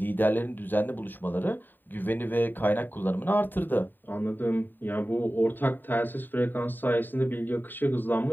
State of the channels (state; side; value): late; right; 0.091 ms